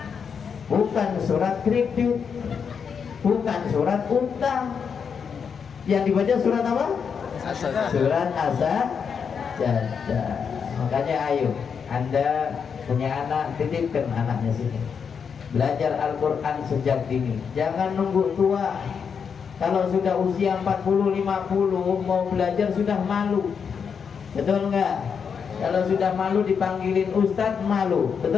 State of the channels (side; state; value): right; quieter; 6.5 dB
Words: bukan surat kredit, bukan surat utang. Yang dibaca surat apa? Surat As-Sajdah. Makanya ayo, Anda punya anak, titipkan anaknya sini, belajar Al-Quran sejak dini. Jangan nunggu tua. Kalau sudah usia 40-50 mau belajar sudah malu. Betul enggak? Kalau sudah malu dipanggilin ustadz, malu.